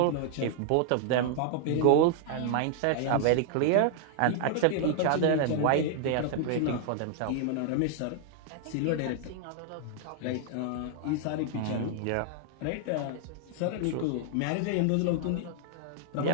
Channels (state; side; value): different; both; correlation 0.00